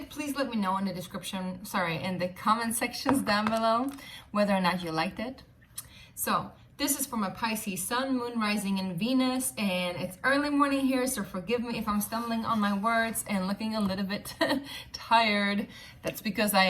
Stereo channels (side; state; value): both; identical; correlation 1.00